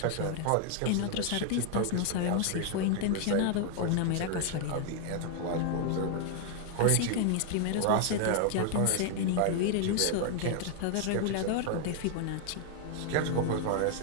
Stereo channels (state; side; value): different; both; correlation 0.00